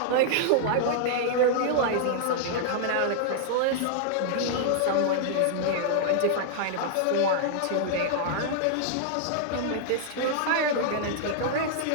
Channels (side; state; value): both; different; correlation -0.01